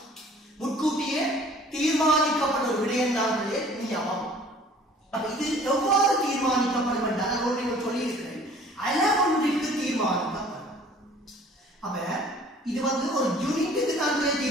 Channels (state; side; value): normal; both; correlation 0.51